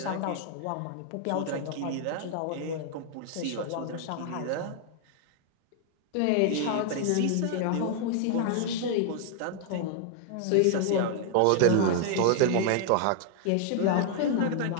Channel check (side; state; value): both; different; correlation 0.00